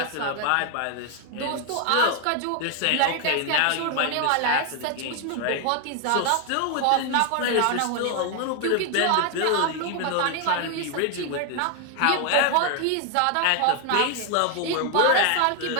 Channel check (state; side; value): different; both; correlation 0.00